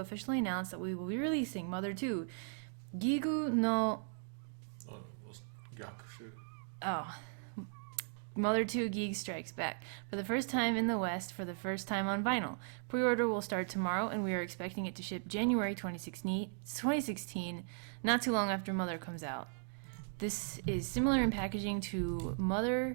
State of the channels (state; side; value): silent; left; digital silence